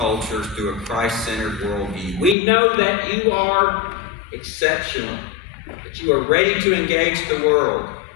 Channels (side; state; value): right; drops out; at 2.4 s